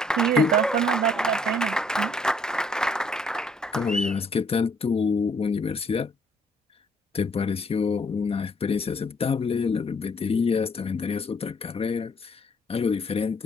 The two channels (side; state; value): both; normal; correlation 0.65